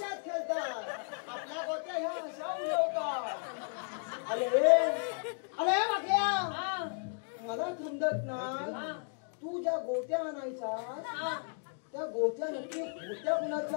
खेळतात. आपल्या गोट्या ह्या अशा उडवतात. अरे अरे वागल्या. हा मला समजत नाही. हा तू ज्या गोट्या आणायचा हा त्या गोट्या नक्की होत्या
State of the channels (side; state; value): right; silent; 55 dB below the other